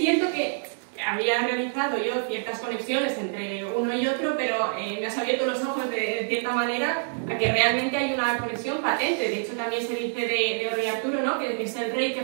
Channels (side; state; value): left; silent; 56 dB below the other